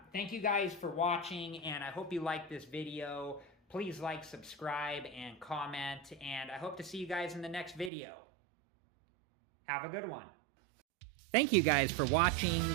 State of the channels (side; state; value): left; drops out; at 7.9 s